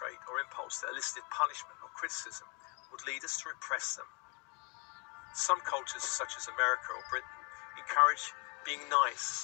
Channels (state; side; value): quieter; right; 32.8 dB